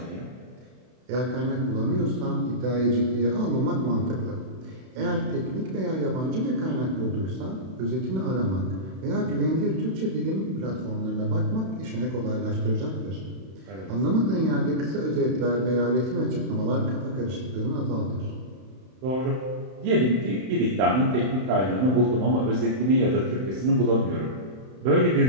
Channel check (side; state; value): left; late; 31 ms